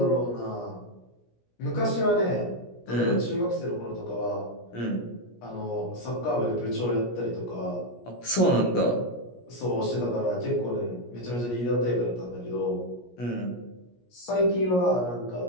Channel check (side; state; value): right; late; 17 ms